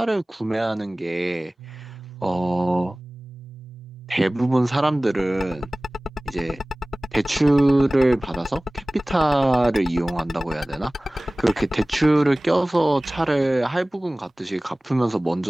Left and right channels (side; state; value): both; normal; correlation 0.98